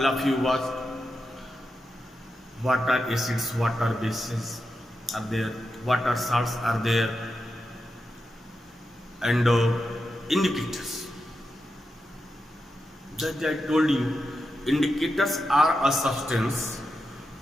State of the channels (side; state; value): both; normal; correlation 0.88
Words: of you watched what are acids, what are bases are there, what are salts are there, and indicators. That I told you, indicators are a substance